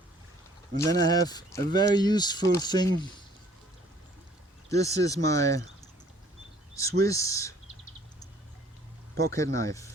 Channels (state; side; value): normal; both; correlation 0.57